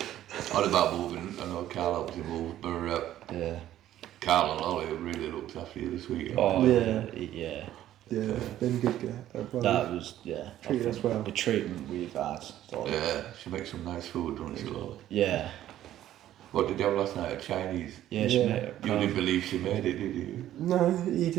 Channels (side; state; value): left; quieter; 12.6 dB